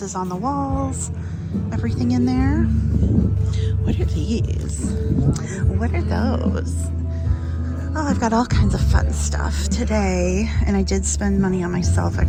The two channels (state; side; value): identical; both; correlation 1.00